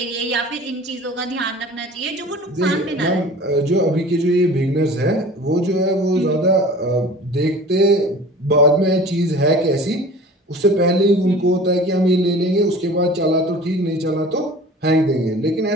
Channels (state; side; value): normal; both; correlation 0.42